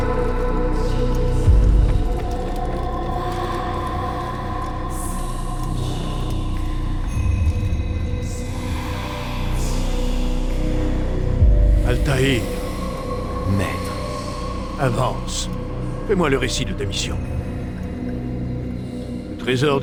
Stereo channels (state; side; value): identical; both; correlation 1.00